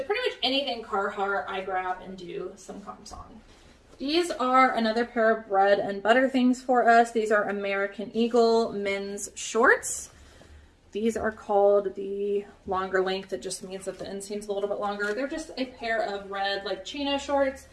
pretty much anything Carhartt I grab and do some comps on. These are another pair of bread and butter things for us. These are American Eagle men's shorts. These are called the longer length. It just means that the inseam's a little bit longer. They're just a pair of red like chino shorts.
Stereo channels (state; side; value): identical; both; correlation 1.00